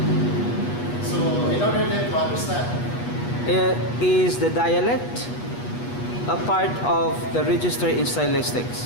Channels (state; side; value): late; right; 8.3 ms